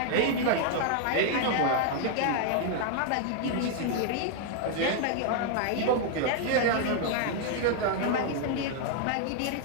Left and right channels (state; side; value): different; both; correlation 0.00